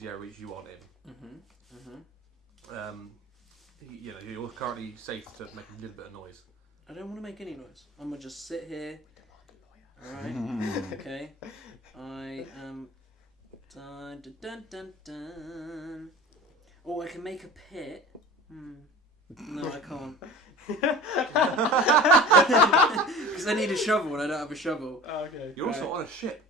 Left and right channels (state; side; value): normal; both; correlation 0.37